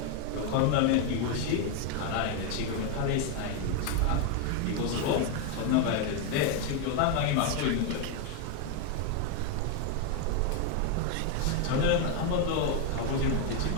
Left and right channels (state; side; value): different; both; correlation 0.01